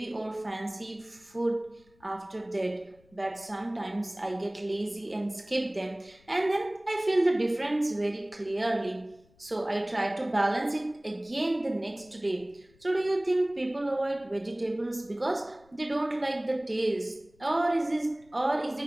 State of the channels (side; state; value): left; noise; rumble, 30 dB below the sound